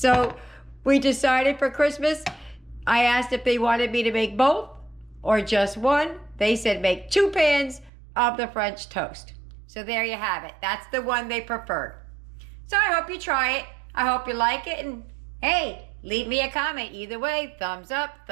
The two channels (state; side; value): drops out; left; at 7.9 s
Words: we decided for Christmas, I asked if they wanted me to make both or just one. They said make 2 pans of the French toast. So there you have it. That's the one they preferred. So I hope you try it. I hope you like it. And hey, leave me a comment. Either way, thumbs up,